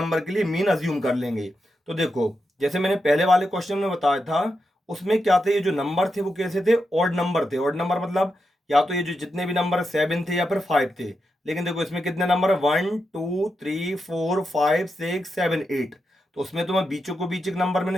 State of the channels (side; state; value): both; normal; correlation 0.86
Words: के लिए मीन अज्यूम कर लेंगे। तो देखो जैसे मैंने पहले वाले क्वेश्चन में बताया था, उसमें क्या थे, ये जो नंबर थे वो कैसे थे, ऑड नंबर थे। ऑड नंबर मतलब या तो ये जो जितने भी नंबर 7 थे या फिर 5 थे। लेकिन देखो इसमें कितने नंबर है, 1 2 3 4 5 6 7 8। तो उसमें तो मैं बीचों को बीच एक नंबर